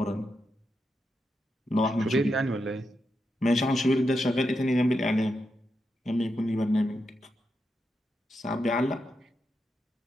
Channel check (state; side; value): normal; both; correlation 0.85